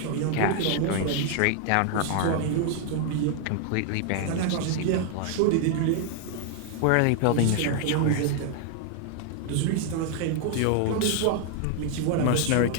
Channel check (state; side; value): different; both; correlation 0.00